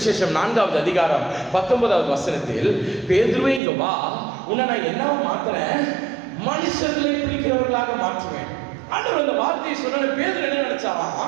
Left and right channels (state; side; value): drops out; left; at 3.6 s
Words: 4வது அதிகாரம் 19வது வசனத்தில், பேதுருவே இங்க வா, உன்னை நான் என்னவா மாத்துறேன், மனுஷர்களை பிடிக்கிறவர்களாக மாற்றுவேன். ஆண்டவர் அந்த வார்த்தையை சொன்ன பேதுரு என்ன